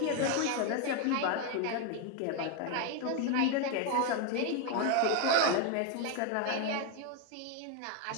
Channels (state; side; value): different; both; correlation 0.01